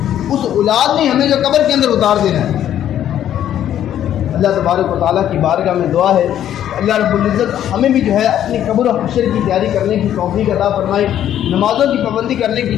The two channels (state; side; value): quieter; right; 10.9 dB